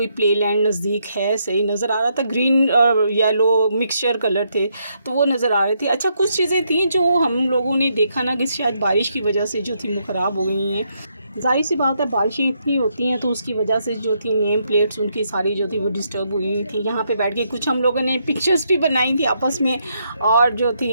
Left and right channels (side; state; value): both; inverted; correlation -0.77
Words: प्ले लैंड नज़दीक है, सही नज़र आ रहा था, ग्रीन और येलो मिक्सचर कलर थे, तो वो नज़र आ रहे थे। अच्छा, कुछ चीज़ें थी जो हम लोगों ने देखा ना कि शायद बारिश की वजह से जो थी वो ख़राब हो गई हैं। जाहिर सी बात है, बारिशें इतनी होती हैं तो उसकी वजह से जो थी नेम प्लेट्स उनकी सारी जो थी वो डिस्टर्ब हुई थी। यहाँ पे बैठ के कुछ हम लोगों ने पिक्चर्स भी बनाई थी आपस में, और जो थी